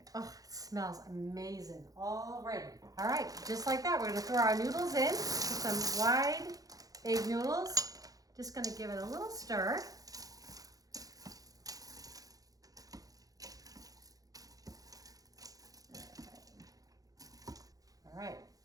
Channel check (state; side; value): late; left; 0.17 ms